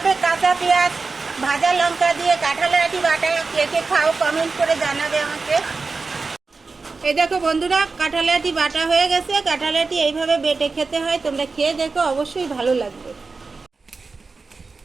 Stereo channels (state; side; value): quieter; left; 4.2 dB